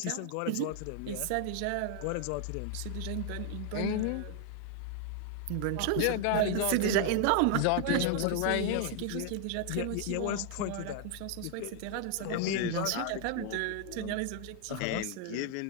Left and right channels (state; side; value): different; both; correlation 0.00